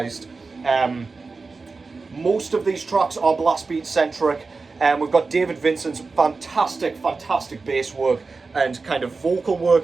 Most of these tracks are blast beat centric. We've got David Vincent's fantastic bass work and kind of vocal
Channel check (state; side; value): quieter; left; 4.1 dB